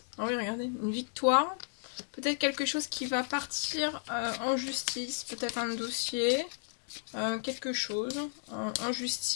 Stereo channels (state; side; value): silent; right; digital silence